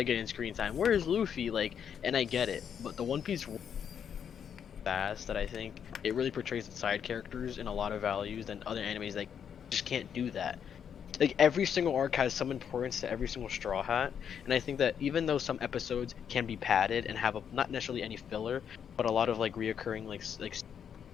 getting screen time? Where is Luffy? Like, and I get it, but the One Piece fast that I think it really portrays the side characters in a lot of values than other animes that just can't do that. Like every single arc has some importance to every single Straw Hat, and I think that even though some episodes can be padded and have not necessarily any filler, but a lot of like reoccurring like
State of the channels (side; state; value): right; quieter; 8.0 dB